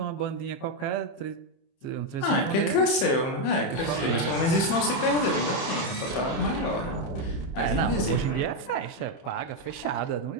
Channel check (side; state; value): right; late; 31 ms